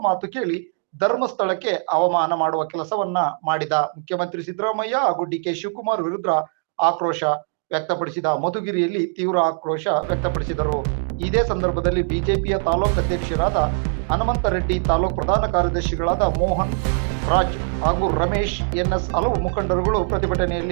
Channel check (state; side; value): silent; left; 64 dB below the other